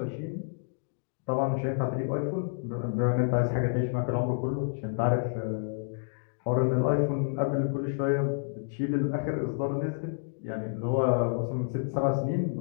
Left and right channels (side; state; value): right; silent; digital silence